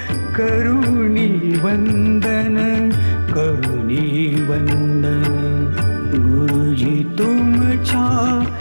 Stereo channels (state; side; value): inverted; both; correlation -1.00